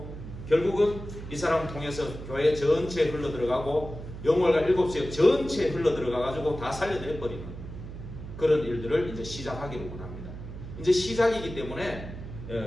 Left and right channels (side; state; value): right; noise; hum, 11 dB below the sound